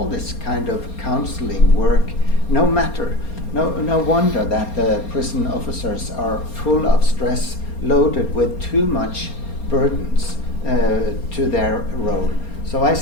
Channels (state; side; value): late; right; 4.3 ms